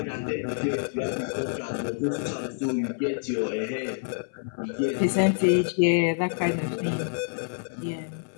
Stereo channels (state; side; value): silent; right; 60 dB below the other